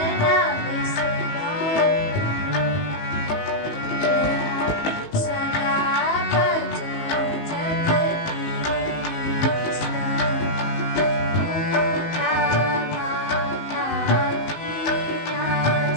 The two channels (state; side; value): late; right; 19 ms